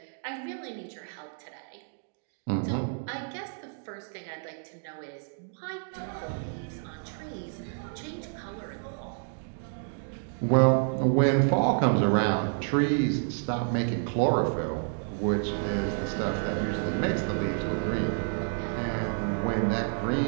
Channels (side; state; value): left; silent; 58 dB below the other